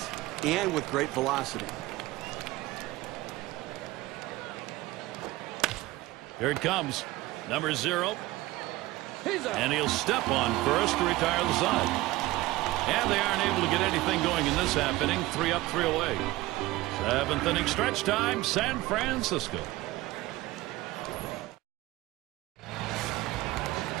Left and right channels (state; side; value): quieter; left; 18.7 dB